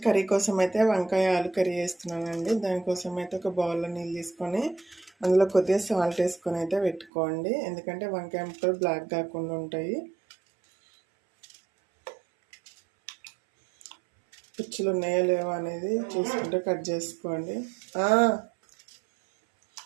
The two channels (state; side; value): drops out; left; at 7.1 s